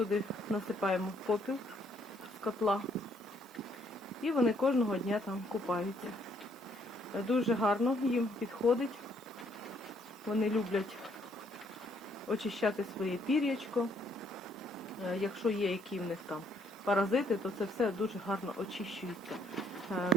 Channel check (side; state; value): both; normal; correlation 0.68